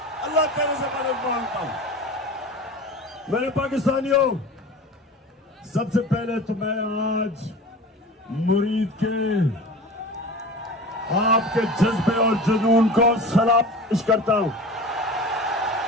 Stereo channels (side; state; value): both; normal; correlation 0.36